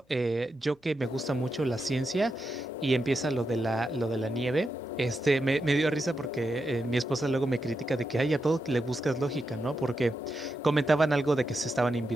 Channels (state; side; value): normal; both; correlation 0.86